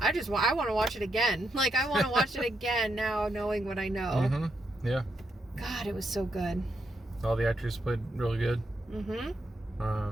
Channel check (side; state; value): both; normal; correlation 0.81